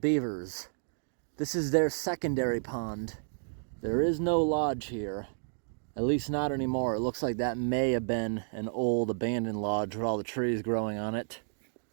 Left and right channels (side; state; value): left; silent; digital silence